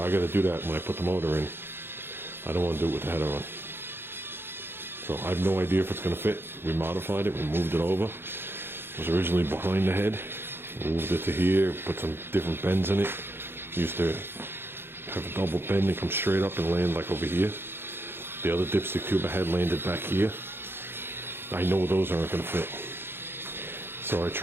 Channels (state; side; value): late; left; 0.11 ms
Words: got to do that when I put the motor in, I don't want to do it with the header on. So I have no idea if it's going to fit. We modified it, we moved it over. It was originally behind the head. We moved it to here, put some different bends in it. Used to have a double bend and come straight up and land like over here. The other dipstick tube I had landed back here. I know those aren't going to fit. So I